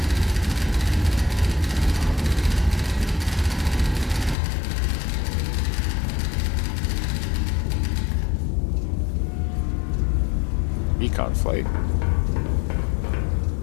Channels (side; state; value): right; drops out; at 4.4 s